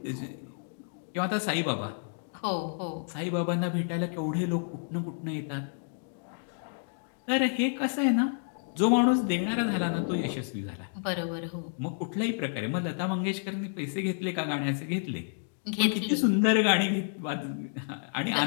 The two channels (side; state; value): right; silent; digital silence